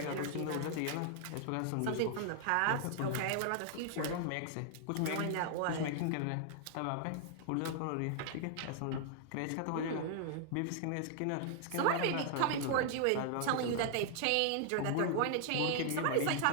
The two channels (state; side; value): different; both; correlation 0.00